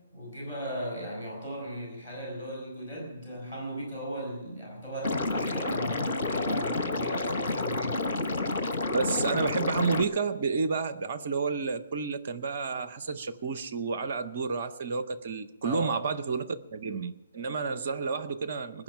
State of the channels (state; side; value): inverted; both; correlation -0.63